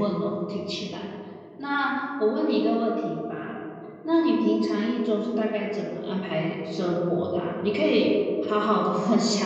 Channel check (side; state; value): both; identical; correlation 1.00